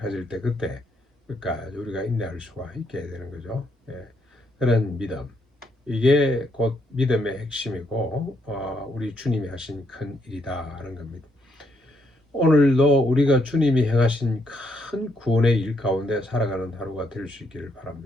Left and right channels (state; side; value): normal; both; correlation 0.75